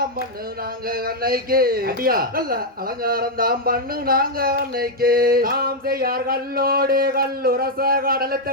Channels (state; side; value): normal; both; correlation -0.01